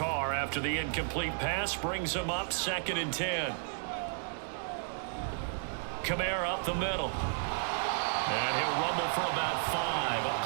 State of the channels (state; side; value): silent; left; digital silence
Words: after the incomplete pass, brings him up 2nd and 10. Kamara up the middle. And he'll rumble for about 5, up